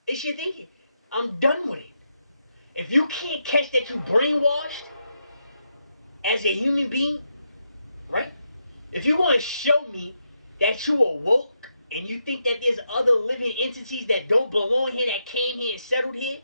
It's your thinking. I'm done with it. If you can't catch that you brainwashed as a human being, right? If you want to show me that you are woke and you think that there's other living entities that don't belong here, that came here and settled here,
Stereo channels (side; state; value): both; inverted; correlation -0.83